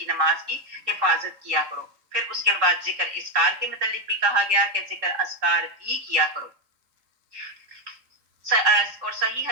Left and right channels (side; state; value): left; late; 3.7 ms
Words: نماز کی حفاظت کیا کرو۔ پھر اس کے بعد ذکر اذکار کے متعلق بھی کہا گیا کہ ذکر اذکار بھی کیا کرو، اور صحیح